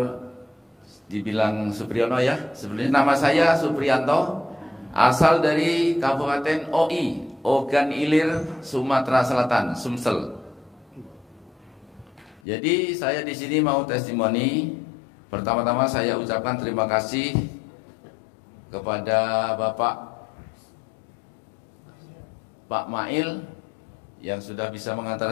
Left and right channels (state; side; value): drops out; right; at 12.4 s